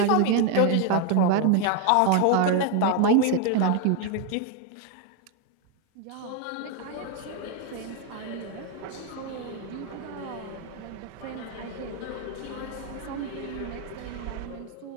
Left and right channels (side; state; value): both; different; correlation 0.01